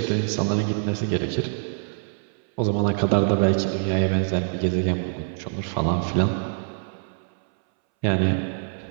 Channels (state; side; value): silent; left; 62 dB below the other